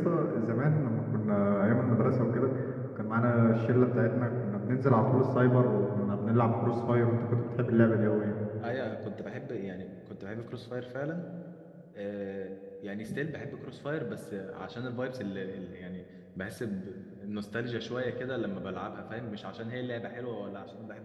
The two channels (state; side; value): identical; both; correlation 1.00